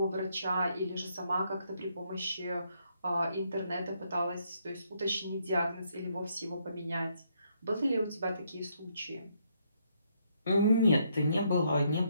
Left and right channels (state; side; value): inverted; both; correlation -0.73